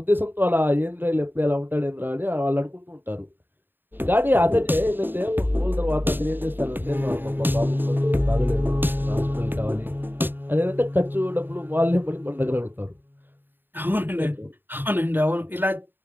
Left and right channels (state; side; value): late; left; 0.095 ms